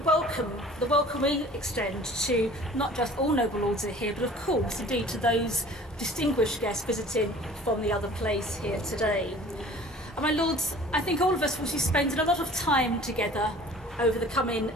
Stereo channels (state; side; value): normal; both; correlation 0.47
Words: the welcome we extend to not just all noble lords who are here, but of course indeed to those distinguished guests visiting from the other place here today. And my Lords, I think all of us will be spending a lot of time together over the coming